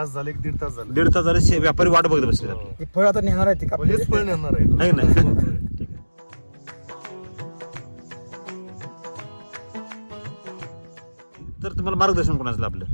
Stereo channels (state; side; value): inverted; both; correlation -1.00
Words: झाले 1.5 तास झाले 1.5 तास झाले व्यापारी वाट बघत बसलेत आपली. ते फळ आता नेणार आहे ते का हेच फळ येणार आहे आहे की नाही? ठीक आहे. तर तुम्हाला मार्गदर्शन कोणाचं आपलं?